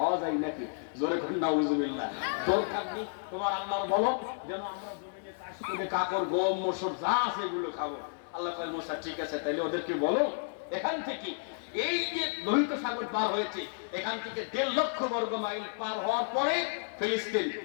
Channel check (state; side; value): silent; right; digital silence